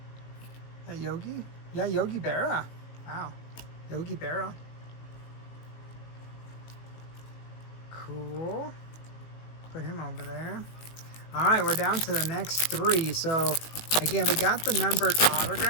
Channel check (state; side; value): late; right; 18 ms